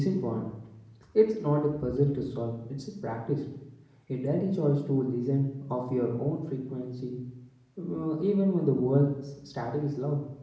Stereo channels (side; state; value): both; identical; correlation 1.00